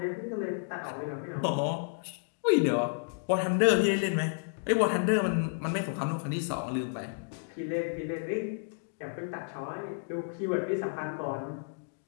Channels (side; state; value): right; silent; digital silence